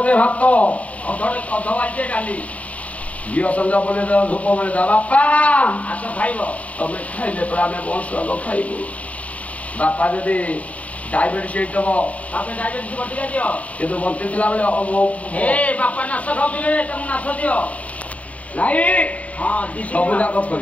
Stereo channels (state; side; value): late; right; 0.068 ms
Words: ଭାତ ଅଧ ବାଲ୍ଟିଏ ଡାଲି ଘିଅ ସଞ୍ଜ ବୋଲେ ଧୂପ ବୋଲେ ବାପା ଆସ ଖାଇବ ତମେ ଖାଇଲେ ପରେ ଆମେ ବଂଶ ଖାଇବୁ ବାପା ଯଦି ଡାଇବେଟିସ୍ ହେଇଥିବ ତାପରେ ଡାଇବେଟିସ୍ ବଟିକା ଦିଅ କିନ୍ତୁ ବଞ୍ଚିଥିଲା ବେଳେ ଏ ବାପା ନାଶ ଖାଉଥିଲେ ତାଙ୍କୁ ନାଶ ଦିଅ ନାଇଁ ହଁ ଦି ସବୁ ଯାକ